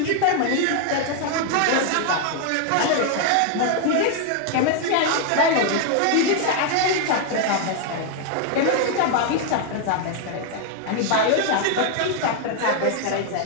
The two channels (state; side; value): different; both; correlation 0.00